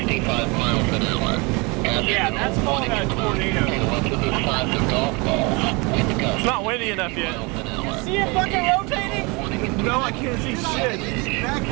miles an hour. Yeah, that's called a tornado. It's not windy enough yet. You see it fucking rotating? No, I can't see shit.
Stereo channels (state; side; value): quieter; left; 28.0 dB